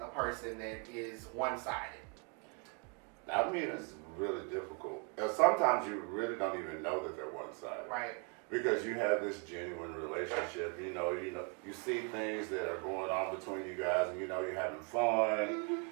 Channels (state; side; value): quieter; left; 36.2 dB